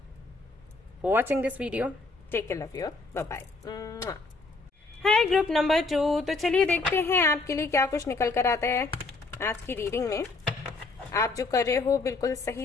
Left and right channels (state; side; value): quieter; right; 3.6 dB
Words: for watching this video. Take care, love you, bye bye. Hi group number 2। तो चलिए देखते हैं आपके लिए क्या कुछ निकल कर आता है आज की रीडिंग में। आप जो कर रहे हो बिल्कुल